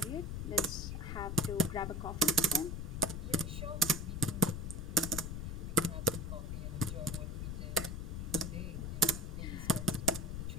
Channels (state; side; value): noise; left; rumble, 4 dB below the sound